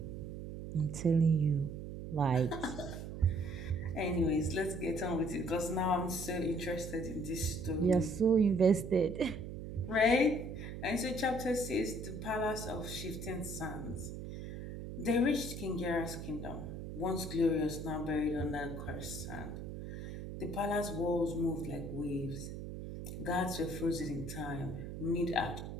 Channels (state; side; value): noise; right; hum, 8 dB below the sound